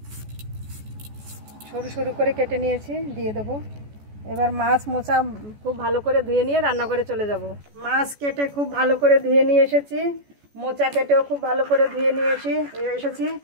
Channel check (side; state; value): left; late; 14 ms